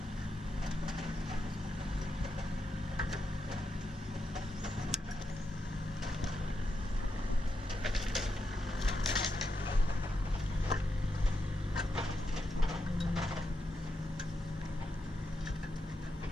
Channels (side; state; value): both; normal; correlation 0.84